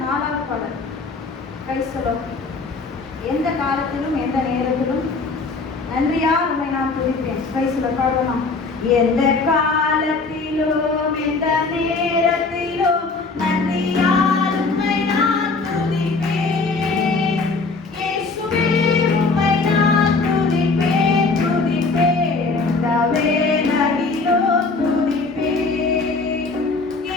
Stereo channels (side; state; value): right; quieter; 4.0 dB